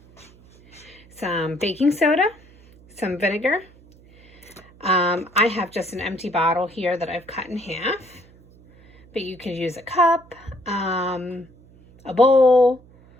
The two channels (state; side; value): noise; right; hum, 26 dB below the sound